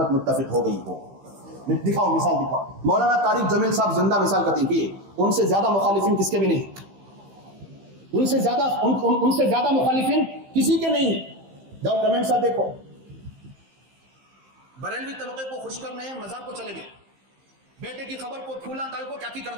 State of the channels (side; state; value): left; late; 15 ms